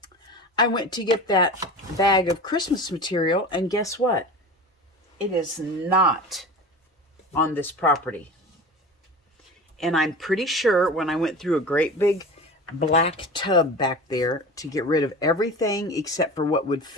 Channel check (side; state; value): both; normal; correlation 0.33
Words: I went to get that bag of Christmas material, and guess what? It is not on this property. And I'm pretty sure when I went through a great big black tub back there to get rid of everything except for what would